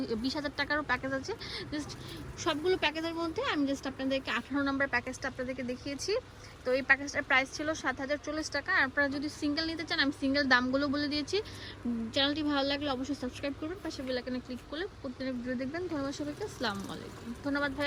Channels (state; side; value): identical; both; correlation 1.00